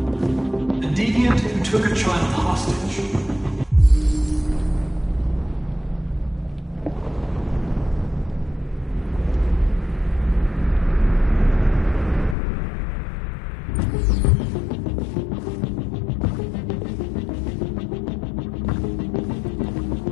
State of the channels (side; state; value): right; drops out; at 12.4 s